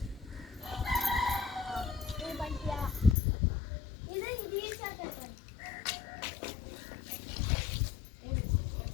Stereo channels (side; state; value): right; drops out; at 3.2 s